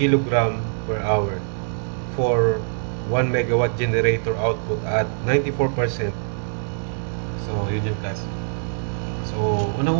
per hour for 1 megawatt generator output at 94%. So, yun yung class. So,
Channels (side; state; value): left; silent; 63 dB below the other